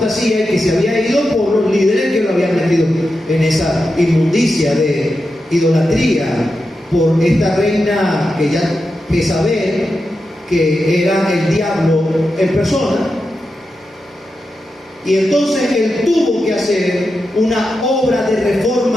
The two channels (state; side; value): normal; both; correlation 0.89